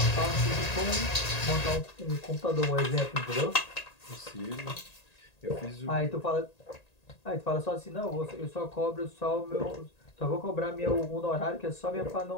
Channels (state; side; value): late; right; 1.9 ms